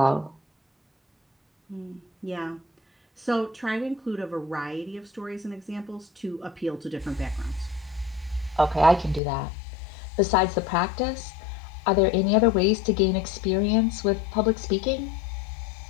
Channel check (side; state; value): right; drops out; at 9.2 s